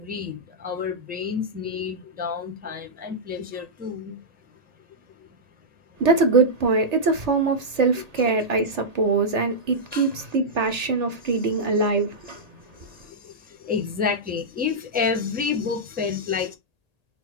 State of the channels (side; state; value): left; late; 1.8 ms